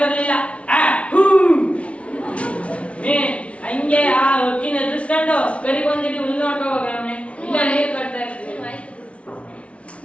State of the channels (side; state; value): right; late; 0.062 ms